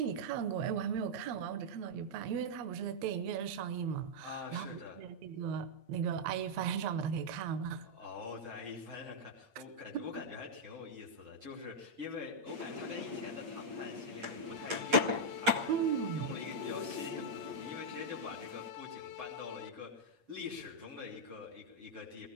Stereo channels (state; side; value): late; left; 8.6 ms